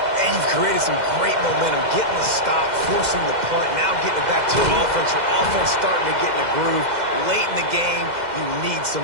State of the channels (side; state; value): left; late; 2.0 ms